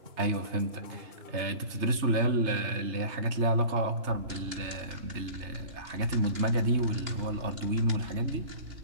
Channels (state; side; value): late; left; 3.3 ms